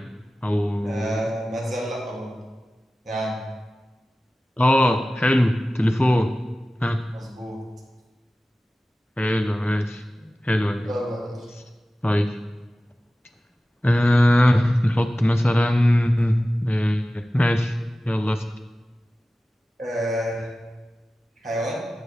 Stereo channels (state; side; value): normal; both; correlation 0.96